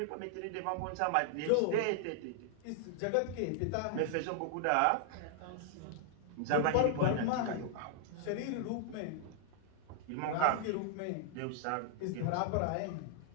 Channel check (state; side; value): different; both; correlation 0.00